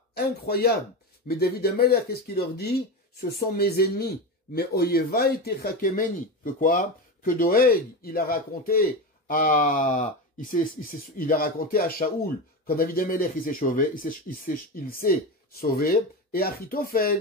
incroyable. Mais David Amelech, qu'est-ce qu'il leur dit? Ce sont mes ennemis. Mais Oyevai techakemeni. Que quoi? Que Doeg, il a raconté à Shaoul, quand David Amelech il s'est sauvé, et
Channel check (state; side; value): normal; both; correlation 0.20